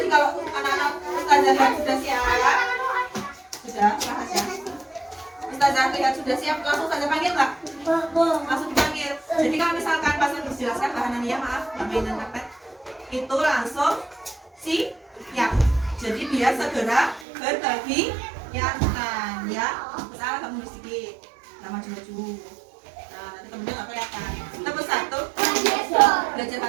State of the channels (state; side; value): drops out; left; at 17.2 s